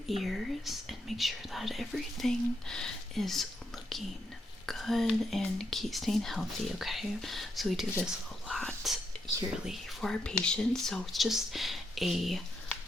ears and make sure that everything is looking good and keep staying healthy, okay? So we do this a lot yearly for our patients. So it's just a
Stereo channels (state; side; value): normal; both; correlation 0.80